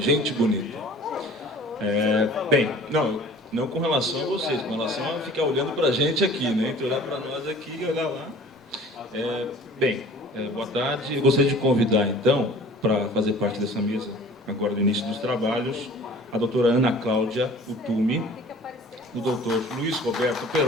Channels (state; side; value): normal; both; correlation 0.47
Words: bonita. Bem, não com relação a vocês, com relação a ficar olhando para a gente aqui, né? Entre olhar para nós aqui e olhar lá. Boa tarde. Eu gostaria de convidar, então, para fazer parte dessa mesa, agora no início dos trabalhos, a doutora Ana Cláudia Utumi, o doutor Luiz Roberto